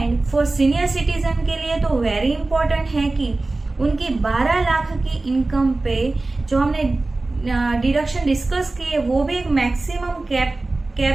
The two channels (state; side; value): quieter; left; 3.2 dB